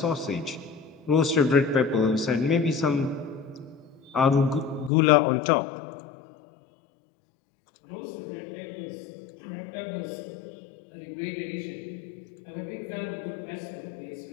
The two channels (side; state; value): right; drops out; at 4.9 s